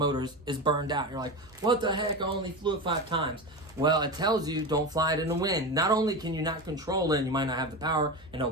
is burned out. You're like, what the heck, I only flew it 5 times. Well, it tells you don't fly it in the wind. Not only can you not control it, and you might not have the power, and it'll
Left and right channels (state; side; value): normal; both; correlation 0.22